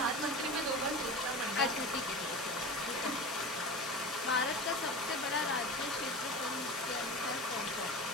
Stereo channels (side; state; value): both; normal; correlation 0.30